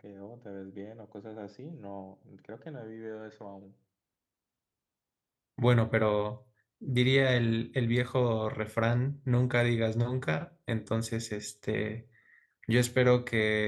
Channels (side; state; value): both; identical; correlation 1.00